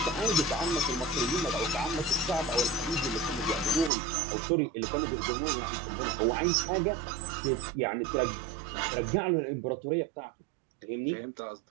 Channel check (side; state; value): left; drops out; at 3.9 s